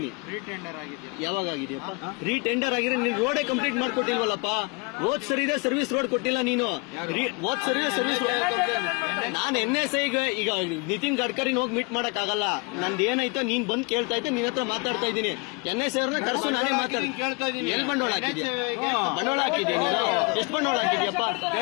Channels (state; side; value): quieter; right; 29.6 dB